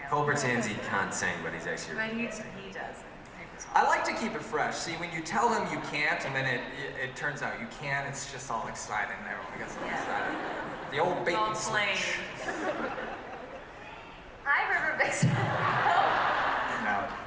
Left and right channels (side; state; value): both; identical; correlation 1.00